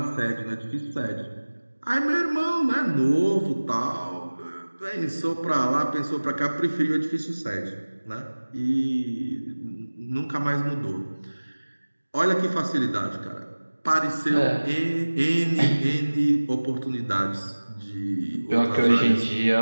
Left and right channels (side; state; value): both; inverted; correlation -1.00